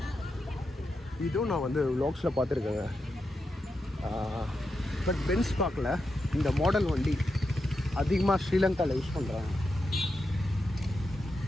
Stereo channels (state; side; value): normal; both; correlation 0.87